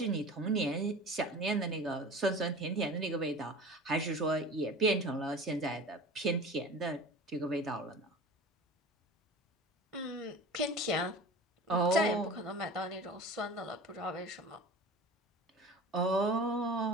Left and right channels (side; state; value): both; normal; correlation 0.37